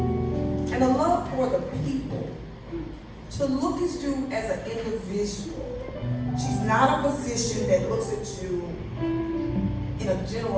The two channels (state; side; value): identical; both; correlation 1.00